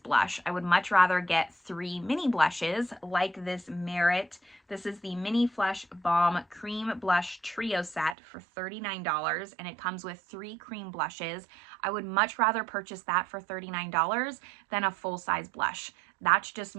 I would much rather get 3 mini blushes like this Merit. This is the Mini Flush Balm Cream Blush Trio Set for $39, and it comes with 3 cream blushes. I would much rather purchase that for $39 than a full-size blush. That's just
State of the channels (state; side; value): drops out; left; at 8.2 s